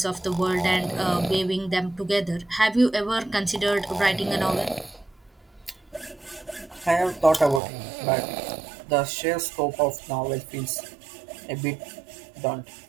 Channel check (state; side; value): drops out; left; at 7.6 s